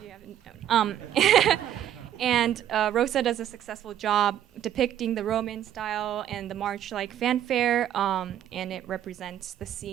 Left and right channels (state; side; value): quieter; left; 10.8 dB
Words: haven't known. And Rosa does a successful job depicting the Roman style and the march-like fanfare, and it represents the